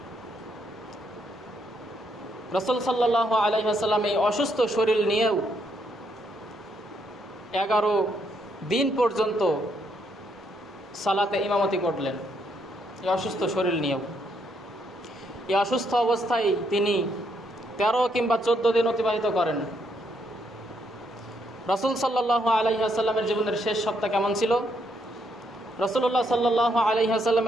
রাসূল সাল্লাল্লাহু আলাইহি ওয়াসাল্লাম এই অসুস্থ শরীর নিয়েও 11 দিন পর্যন্ত সালাতে ইমামতি করলেন, এই অসুস্থ শরীর নিয়েও। এই অসুস্থ অবস্থায় তিনি 13 কিংবা 14 দিন অতিবাহিত করেন। রাসূল সাল্লাল্লাহু আলাইহি ওয়াসাল্লামের জীবনের শেষ সপ্তাহ কেমন ছিল? রাসূলুল্লাহ সাল্লাল্লাহু আলাইহি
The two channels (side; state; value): both; normal; correlation 0.74